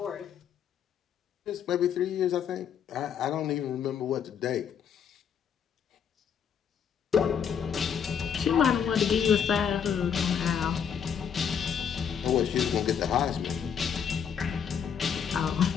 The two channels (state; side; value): quieter; right; 7.7 dB